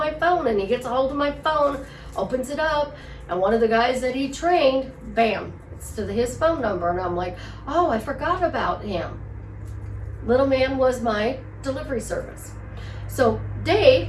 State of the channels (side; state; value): both; identical; correlation 1.00